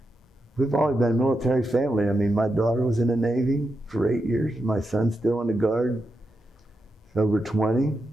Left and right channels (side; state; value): both; normal; correlation 0.87